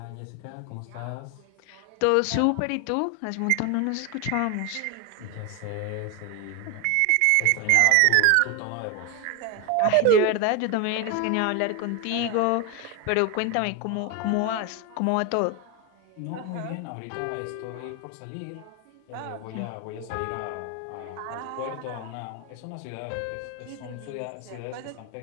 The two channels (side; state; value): both; different; correlation 0.01